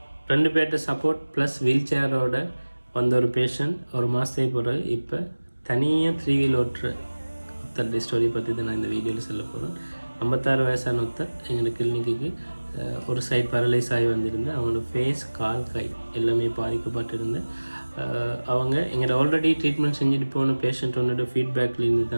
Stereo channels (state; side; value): inverted; both; correlation -1.00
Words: 2 பேர்கிட்ட சப்போர்ட் ப்ளஸ் வீல் சேரோட வந்த ஒரு பேஷண்ட் ஒரு மாதத்துக்கு பிறகு இப்போ தனியாக 3 வீல் ஓட்டுற ஒருத்தருடைய ஸ்டோரி பற்றி தான் நான் இந்த வீடியோவில் சொல்ல போகிறேன். 56 வயசான ஒருத்தர் எங்களோட கிளினிக்கு ஒரு சைட் பேரலைஸ் ஆகி வந்திருந்தேன். அவங்களோட ஃபேஸ், கால், கை எல்லாமே பாதிக்கப்பட்டிருந்தேன். அவங்க எங்களோட ஆல்ரெடி ட்ரீட்மெண்ட் செஞ்சுட்டு போன பேஷண்ட் ஒன்னோட ஃபீட்பேக்லேருந்து